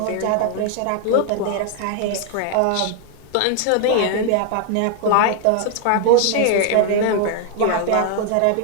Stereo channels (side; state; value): both; different; correlation 0.00